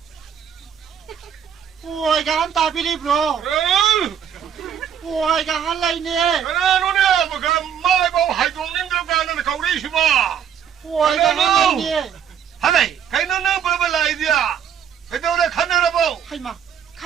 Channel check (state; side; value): quieter; left; 8.6 dB